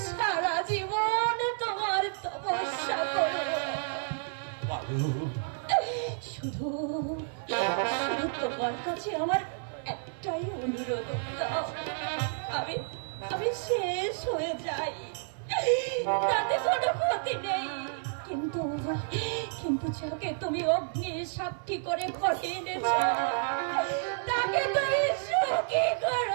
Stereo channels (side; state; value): left; silent; 57 dB below the other